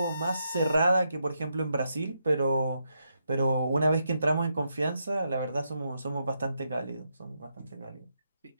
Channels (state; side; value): inverted; both; correlation -0.81